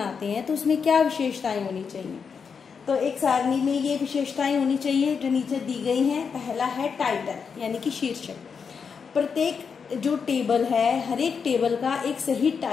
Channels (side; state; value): right; quieter; 6.1 dB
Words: हैं, तो उसमें क्या विशेषताएं होनी चाहिए। तो एक सारणी में ये विशेषताएं होनी चाहिए जो नीचे दी गई हैं। पहला है टाइटल यानी कि शीर्षक। प्रत्येक जो टेबल है, हर एक टेबल का एक सही